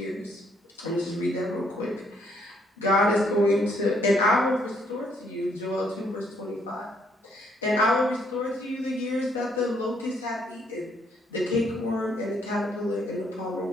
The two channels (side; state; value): both; normal; correlation 0.69